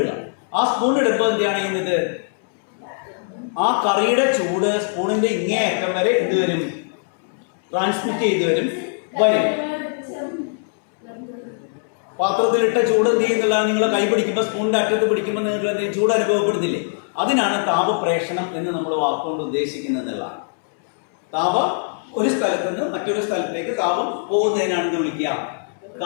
ആ സ്പൂൺ ഇടുമ്പോൾ എന്താണ് ചെയ്യുന്നത്? ആ കറിയുടെ ചൂട് സ്പൂണിന്റെ ഇങ്ങേയറ്റം വരെ എന്ത് വരും? ട്രാൻസ്മിറ്റ് ചെയ്ത് വരും. പാത്രത്തിലിട്ട ചൂട് എന്ത് ചെയ്യുന്നില്ല, നിങ്ങൾ കൈ പിടിക്കുമ്പോൾ സ്പൂണിന്റെ അറ്റത്ത് പിടിക്കുമ്പോൾ നിങ്ങൾക്ക് ചൂട് അനുഭവപ്പെടുന്നില്ലേ? അതിനാണ് താപപ്രേഷണം എന്ന് നമ്മൾ വാക്കുകൊണ്ട് ഉദ്ദേശിക്കുന്നതെന്നുള്ളതാണ്. താപം ഒരു സ്ഥലത്ത് നിന്ന് മറ്റൊരു സ്ഥലത്തേക്ക് താപം പോകുന്നതിനാണ് എന്ന് വിളിക്കുക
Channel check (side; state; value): right; silent; 65 dB below the other